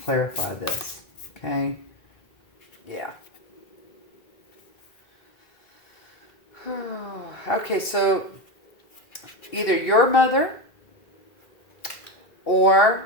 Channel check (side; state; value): right; late; 2.7 ms